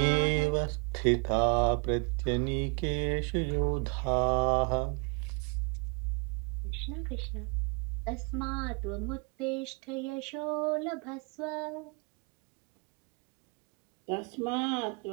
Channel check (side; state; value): left; quieter; 33.9 dB